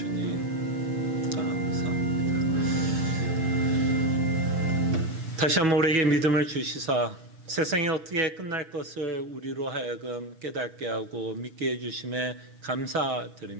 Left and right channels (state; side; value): late; left; 6.2 ms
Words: 감사합니다. 다시 한번 우리에게 믿음을 주시사 세상이 어떻게 끝날 것을 우리로 하여금 깨닫게 하고 믿게 해주심에